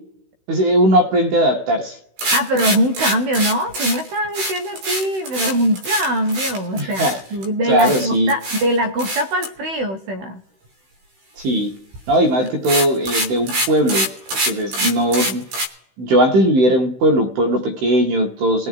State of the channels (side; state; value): left; late; 16 ms